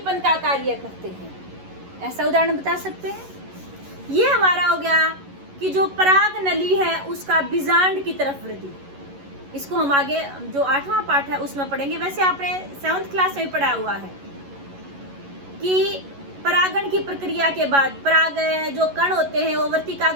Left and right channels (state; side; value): late; left; 11 ms